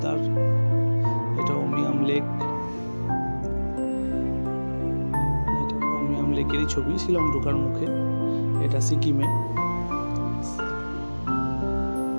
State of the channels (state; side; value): inverted; both; correlation -1.00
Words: এটা উমিয়াম লেক, এটা উমিয়াম লেকেরই ছবি শিলং ঢোকার মুখে। এটা সিকিমে।